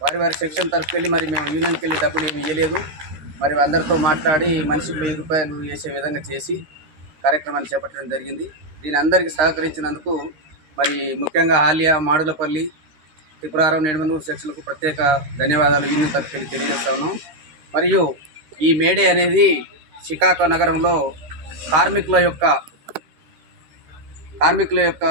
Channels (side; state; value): left; late; 13 ms